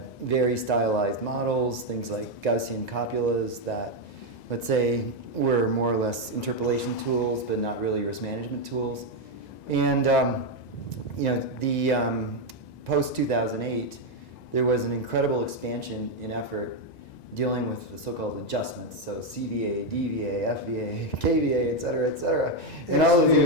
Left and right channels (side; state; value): right; late; 1.9 ms